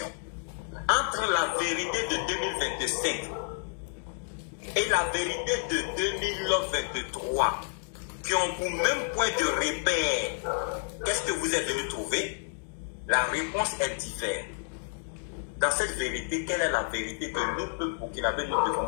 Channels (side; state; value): right; silent; digital silence